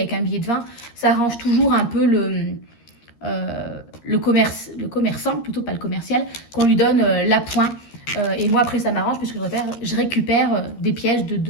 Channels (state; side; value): late; right; 13 ms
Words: un billet de 20, ça arrange toujours un peu le commerçant, plutôt pas le commercial, qu'on lui donne l'appoint. Et moi, après, ça m'arrange puisque je récupère des pièces de